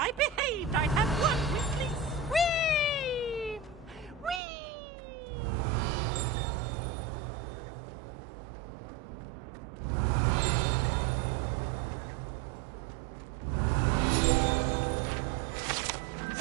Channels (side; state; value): left; drops out; at 4.4 s